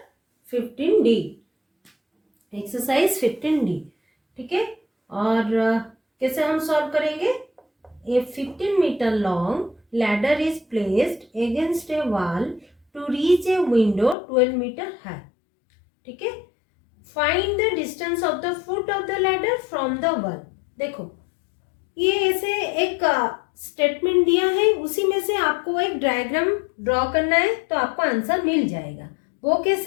15D, exercise 15D। ठीक है, और कैसे हम सॉल्व करेंगे? A 15 metre long ladder is placed against a wall to reach a window 12 metre high. ठीक है, find the distance of the foot of the ladder from the wall. देखो, ये ऐसे एक स्टेटमेंट दिया है, उसी में से आपको एक डायग्राम ड्रॉ करना है तो आपको आंसर मिल जाएगा। वो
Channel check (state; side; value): drops out; right; at 14.2 s